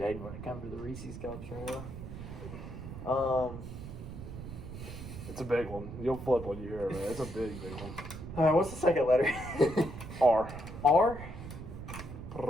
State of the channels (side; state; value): right; noise; rumble, 10 dB below the sound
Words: when it comes to the Reese's cups right now. It's a big one. You'll flip when you hear it, man. It's a big, big one. All right, what's the second letter? R. R?